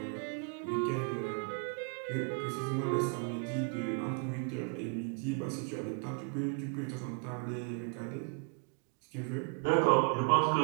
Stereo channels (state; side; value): quieter; left; 35.3 dB